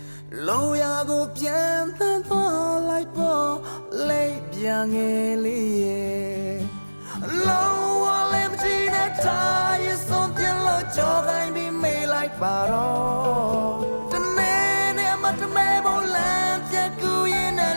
လိုရာကိုပြန်သန်းသွားလိုက်ပေါ်လိမ့်ပြငယ်လေးရဲ့လုံးဝလည်းမကြည့်နဲ့တာရဲ့ဆုံးပြလို့ကြော်ခိုင်းပြီးမေးလိုက်ပါတော့တနေ့နဲ့မတမဲဖို့လမ်းပြက်ကူရင်နဲ့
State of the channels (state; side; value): inverted; both; correlation -1.00